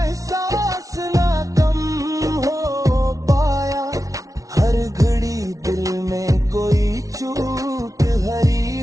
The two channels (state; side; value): late; left; 0.17 ms